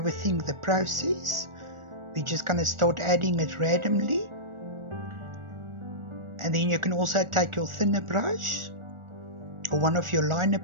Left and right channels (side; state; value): left; late; 1.4 ms